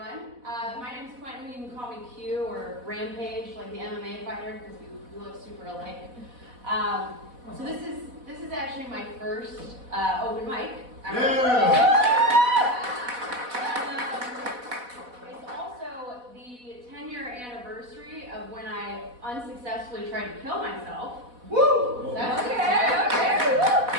My name's Quentin. You can call me Q or Rampage, like the MMA fighter, because we look super alike. So this is actually my first open mic. It's also the 10-year anniversary of when I unsuccessfully tried to kill myself. Woo! That's okay.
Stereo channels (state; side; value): late; left; 4.1 ms